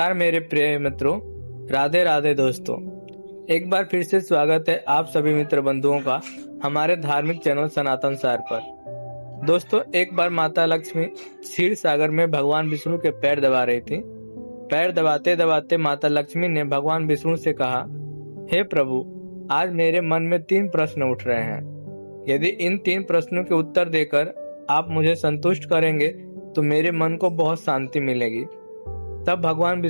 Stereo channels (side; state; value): both; inverted; correlation -1.00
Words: मेरे प्रिय मित्रों, राधे राधे दोस्तों। एक बार फिर से स्वागत है आप सभी मित्र बंधुओं का हमारे धार्मिक चैनल सनातन सार पर। दोस्तों, एक बार माता लक्ष्मी क्षीर सागर में भगवान विष्णु के पैर दबा रही थी। पैर दबाते दबाते माता लक्ष्मी ने भगवान विष्णु से कहा, हे प्रभु, आज मेरे मन में 3 प्रश्न उठ रहे हैं। यदि इन 3 प्रश्नों के उत्तर देकर आप मुझे संतुष्ट करेंगे तो मेरे मन को बहुत शांति मिलेगी। तब भगवान